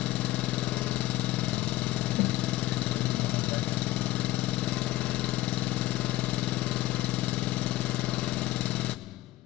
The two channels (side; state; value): right; quieter; 16.2 dB